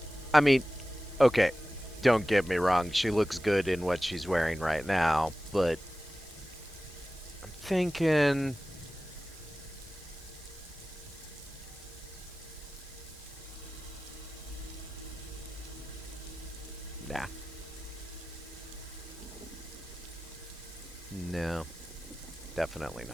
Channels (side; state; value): both; normal; correlation 0.96